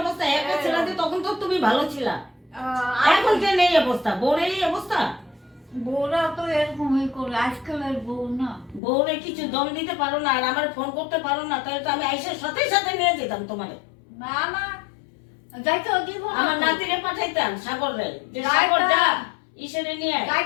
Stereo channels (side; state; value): right; drops out; at 8.8 s